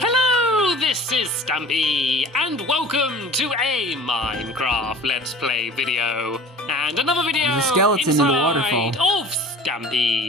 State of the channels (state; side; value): normal; both; correlation 0.42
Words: this is Stampy, and welcome to a Minecraft Let's Play video. And another video There's a skeleton in the waterfall of